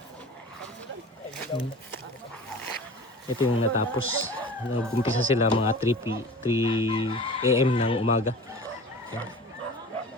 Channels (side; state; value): both; normal; correlation 0.38